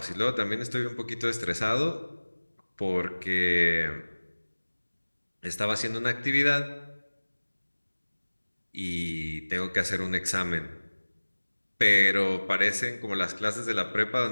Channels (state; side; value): inverted; both; correlation -1.00